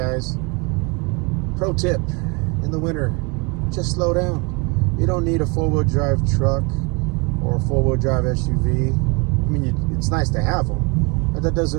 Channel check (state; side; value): quieter; left; 30.2 dB